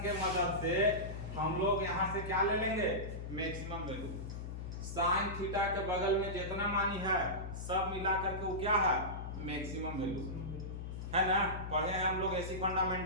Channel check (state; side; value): noise; left; hum, 7 dB below the sound